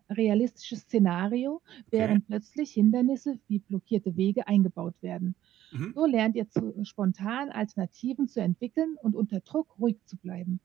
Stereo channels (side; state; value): left; quieter; 12.7 dB